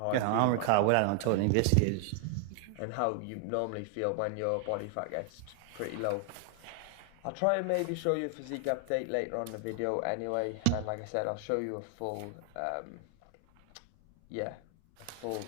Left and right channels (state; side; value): different; both; correlation 0.00